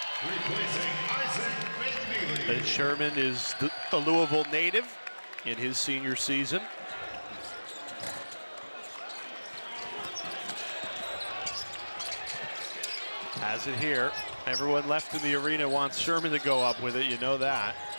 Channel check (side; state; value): both; inverted; correlation -1.00